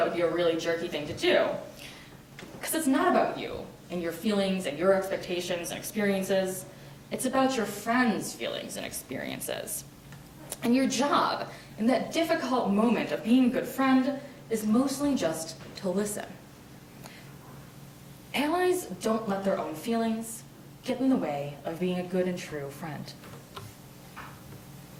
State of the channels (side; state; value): both; identical; correlation 1.00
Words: would be a really jerky thing to do, because it's not about you and your feelings and your expectations and experiences. It's about your friend's feelings and experiences. And your job in that difficult moment of being a good friend is mostly just to listen. Allies don't let their own feelings, get in the way of being a good and true friend.